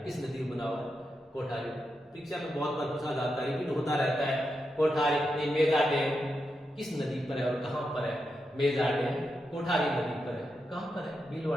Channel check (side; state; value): both; normal; correlation 0.86